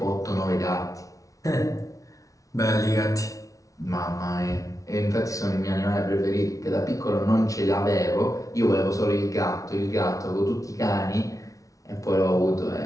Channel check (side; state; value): right; late; 0.17 ms